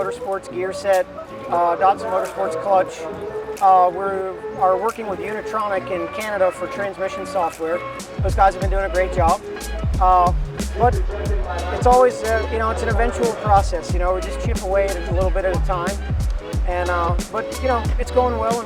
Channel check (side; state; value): both; identical; correlation 1.00